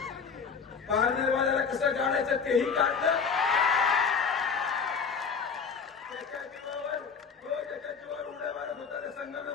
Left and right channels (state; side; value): quieter; right; 5.9 dB